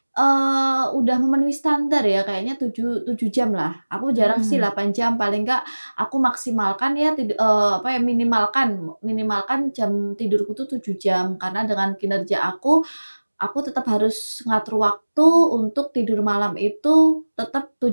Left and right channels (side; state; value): both; inverted; correlation -1.00